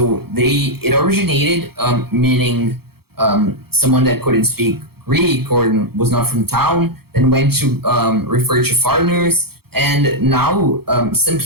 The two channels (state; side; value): late; left; 0.96 ms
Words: it originated meaning someone that couldn't speak Greek or was not from town, then went to refer to foreigners, and now some